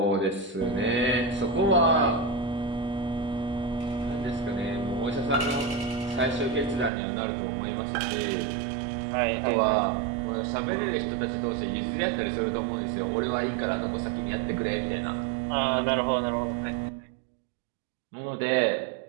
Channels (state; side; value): drops out; left; at 6.9 s